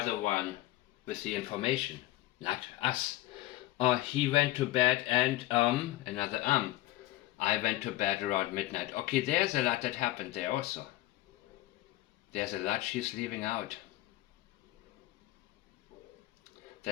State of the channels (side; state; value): right; quieter; 16.9 dB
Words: the one with the information, not us. He went to bed and another I went to bed around midnight. Okay, there's a lot that happened there also. There's a lot she's leaving out.